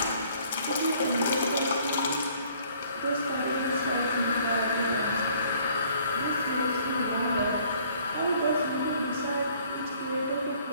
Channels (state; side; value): inverted; both; correlation -0.59